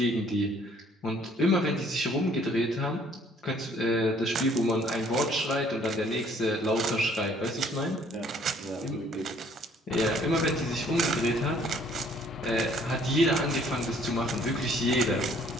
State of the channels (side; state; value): both; normal; correlation 0.60